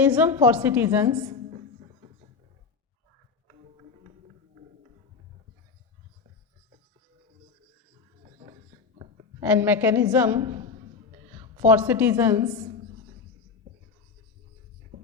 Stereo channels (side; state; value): right; quieter; 5.1 dB